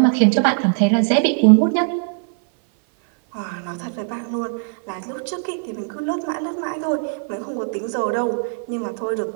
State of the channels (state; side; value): silent; left; 57 dB below the other